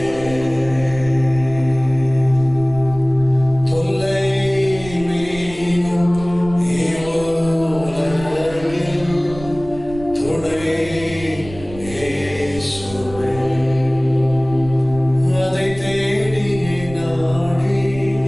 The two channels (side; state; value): right; noise; rumble, 15 dB below the sound